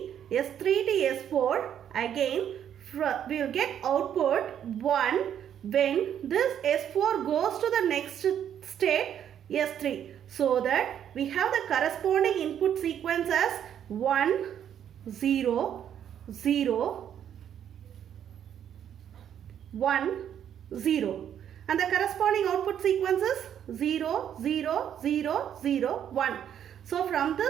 S3 to S4. Again we will get output 1 when this S4 goes to the next state S3. So that we have the corresponding input sequence as 1, 0, 0, 1, 0. And the corresponding output sequence is 0, 0, 0, 0, 1. So from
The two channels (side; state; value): left; quieter; 9.5 dB